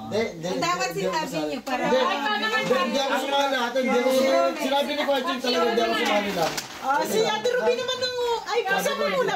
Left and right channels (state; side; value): identical; both; correlation 1.00